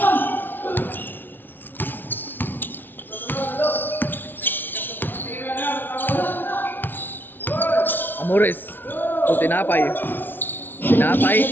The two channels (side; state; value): right; late; 0.095 ms